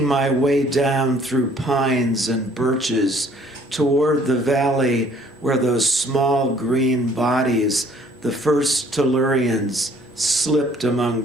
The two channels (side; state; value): both; normal; correlation 0.59